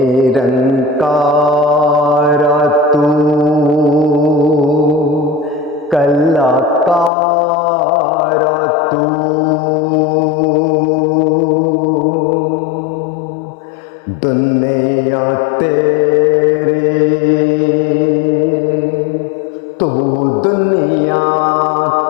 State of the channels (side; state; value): right; drops out; at 7.1 s